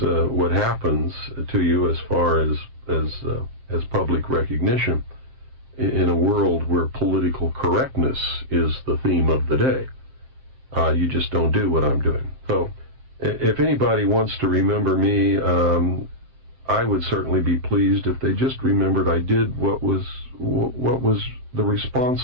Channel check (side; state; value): left; late; 7.6 ms